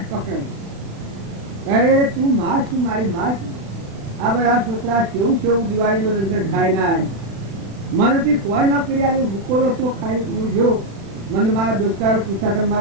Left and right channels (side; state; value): left; late; 36 ms